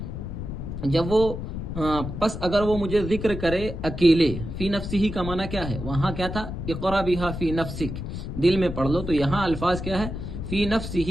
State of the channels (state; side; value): noise; left; rumble, 6 dB below the sound